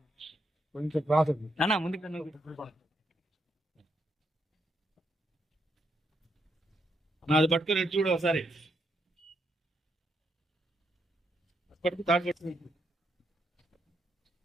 కొంచెం నాది పట్టుకుని చూడు ఒకసారి. పట్టుకు తాడు పట్టుకు.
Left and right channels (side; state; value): both; normal; correlation 0.79